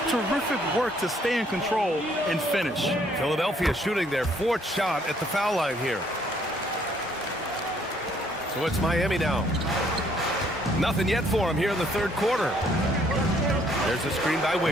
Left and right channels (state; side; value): normal; both; correlation 0.65